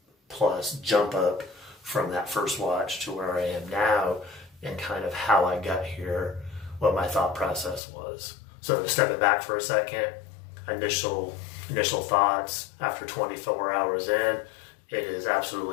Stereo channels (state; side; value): drops out; right; at 7.8 s